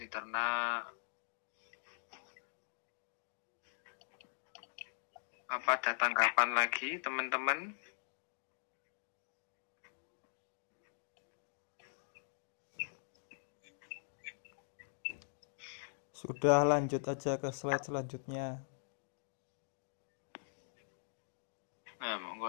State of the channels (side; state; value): right; silent; digital silence